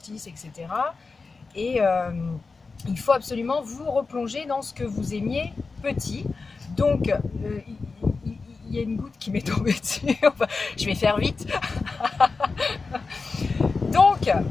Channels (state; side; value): quieter; right; 4.2 dB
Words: etc. Et il faut absolument vous replonger dans ce que vous aimiez petit. Donc, il y a une goutte qui m'est tombée dessus. Je vais faire vite. Donc,